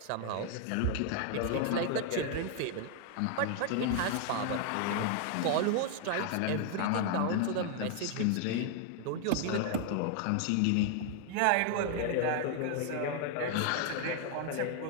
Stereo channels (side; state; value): both; different; correlation 0.00